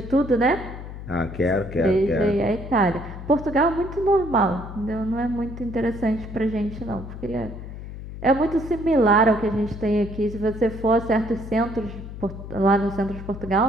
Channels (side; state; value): left; noise; hum, 11 dB below the sound